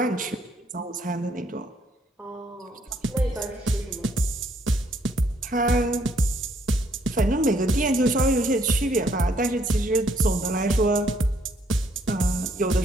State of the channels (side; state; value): both; normal; correlation 0.68